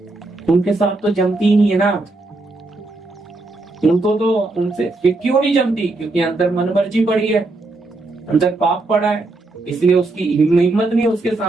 उनके साथ तो जमती ही नहीं है ना, उनको तो उनसे क्यों नहीं जमती? क्योंकि अंदर मनमर्जी पड़ी है, अंदर पाप पड़ा है, इसलिए उसकी हिम्मत नहीं उसके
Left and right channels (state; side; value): quieter; left; 3.1 dB